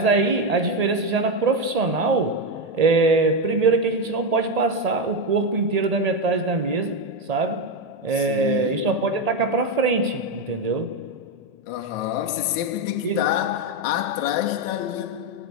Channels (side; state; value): left; late; 1.8 ms